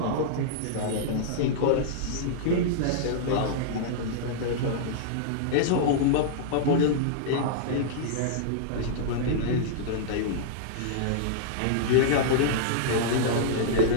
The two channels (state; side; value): different; both; correlation -0.02